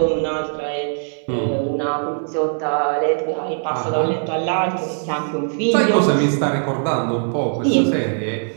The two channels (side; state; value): left; silent; digital silence